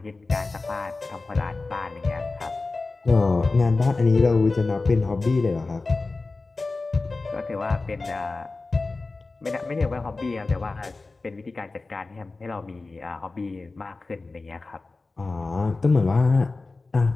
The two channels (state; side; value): quieter; right; 3.6 dB